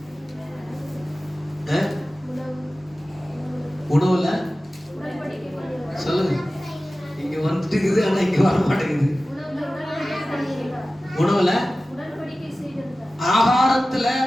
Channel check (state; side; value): normal; both; correlation 0.96